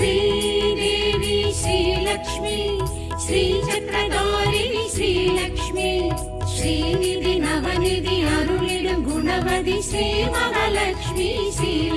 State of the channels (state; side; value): identical; both; correlation 1.00